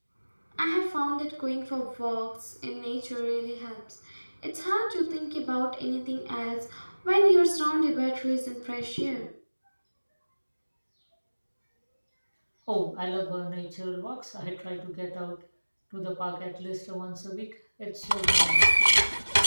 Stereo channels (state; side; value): inverted; both; correlation -1.00